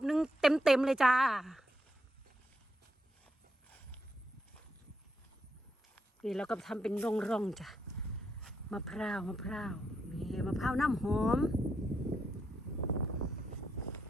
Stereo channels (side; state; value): both; normal; correlation 0.81